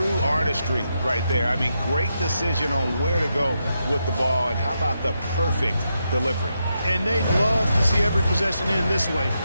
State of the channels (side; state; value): both; inverted; correlation -0.84